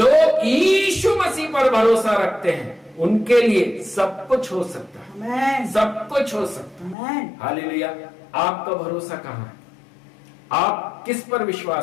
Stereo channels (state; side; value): drops out; right; at 7.0 s